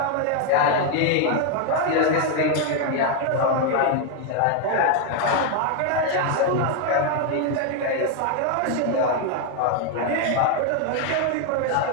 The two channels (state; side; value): different; both; correlation 0.01